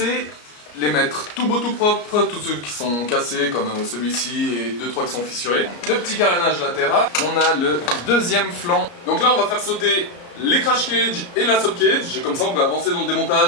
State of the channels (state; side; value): late; right; 34 ms